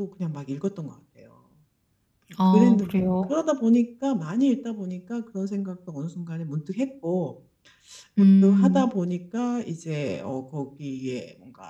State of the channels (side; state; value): both; identical; correlation 1.00